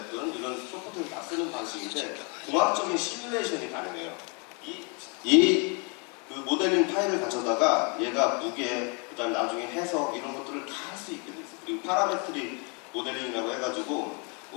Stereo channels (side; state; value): right; quieter; 34.2 dB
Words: 이런 소프트웨어를 다 쓰는 방식인데 공학적인 시뮬레이션이 가능해요. 그 모델링 파일을 가져다가 얘가 무게, 그다음 나중에 해석 이런 것들을 다 할 수 있게 돼 있어요. 그리고 파라메트릭 모델링이라고 해가지고